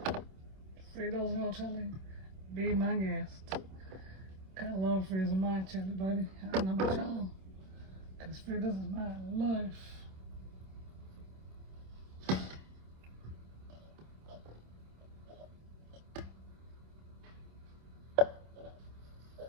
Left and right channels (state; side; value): late; left; 26 ms